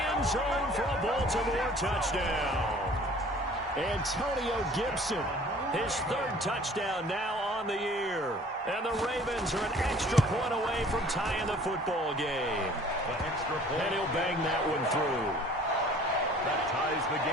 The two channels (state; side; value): normal; both; correlation 0.51